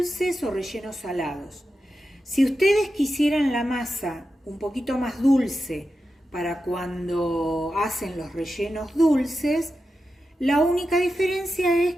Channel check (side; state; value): both; normal; correlation 0.90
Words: o rellenos salados. Si ustedes quisieran la masa un poquito más dulce para cuando hacen los rellenos dulces, la única diferencia es